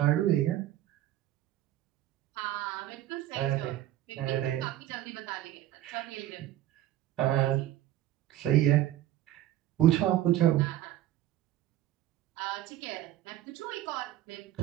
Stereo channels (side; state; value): left; quieter; 13.6 dB